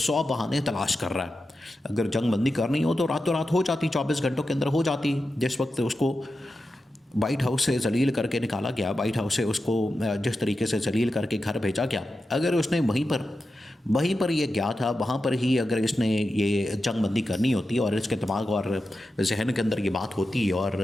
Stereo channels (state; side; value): normal; both; correlation 0.91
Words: بہانے تلاش کر رہا ہے۔ اگر جنگ بندی کرنی ہو تو راتوں رات ہو جاتی، 24 گھنٹوں کے اندر ہو جاتی۔ جس وقت اس کو وائٹ ہاؤس سے ذلیل کر کے نکالا گیا، وائٹ ہاؤس سے اس کو جس طریقے سے ذلیل کر کے گھر بھیجا گیا، اگر اس نے وہیں پر یہ گیا تھا، وہاں پر ہی اگر اس نے یہ جنگ بندی کرنی ہوتی، اور اس کے دماغ اور ذہن کے اندر یہ بات ہوتی، اور